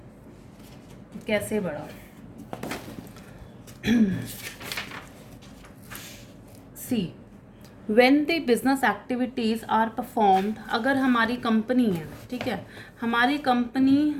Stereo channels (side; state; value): both; identical; correlation 1.00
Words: कैसे बढ़ा. See, when the business activities are performed, अगर हमारी कंपनी है, ठीक है, हमारी कंपनी